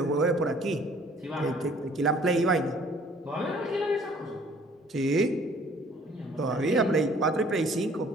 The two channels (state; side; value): normal; both; correlation 0.56